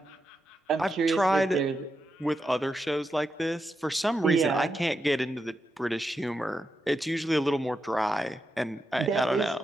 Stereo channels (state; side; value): normal; both; correlation 0.86